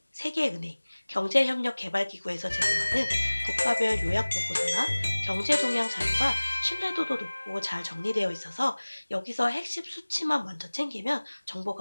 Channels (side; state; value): both; inverted; correlation -1.00